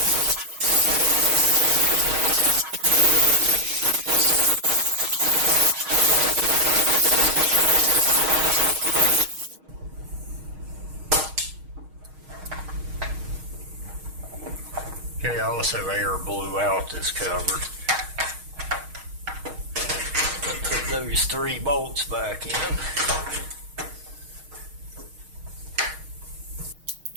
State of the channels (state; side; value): late; left; 6.4 ms